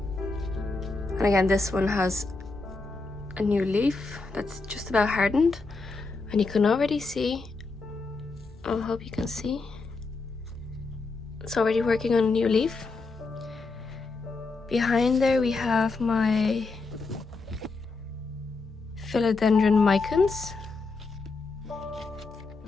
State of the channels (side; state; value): right; quieter; 3.8 dB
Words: And again, this one has a new leaf that's just about hardened, and you can already see, I hope you can see, it's already working on a new leaf. Behind there we have my philodendron micans.